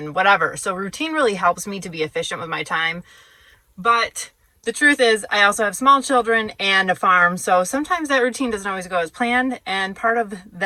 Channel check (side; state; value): both; identical; correlation 1.00